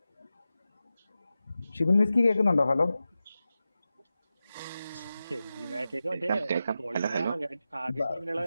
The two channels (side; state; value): both; inverted; correlation -0.93